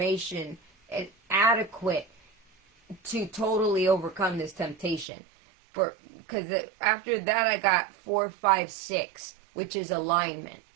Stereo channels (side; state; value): left; drops out; at 5.1 s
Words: and adequate to totally overcome this temptation. Because after that I got 4, 5, 6, which is alignment,